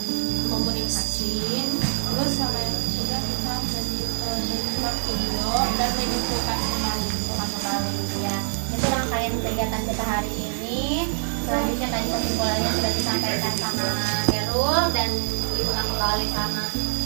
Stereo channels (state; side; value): silent; left; 58 dB below the other